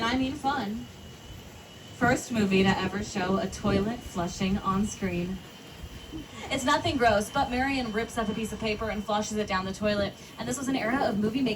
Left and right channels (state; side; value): identical; both; correlation 1.00